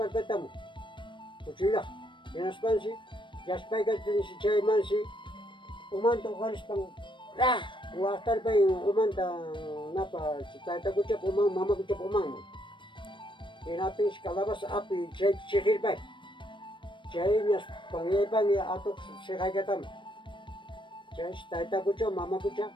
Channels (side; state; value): right; late; 0.23 ms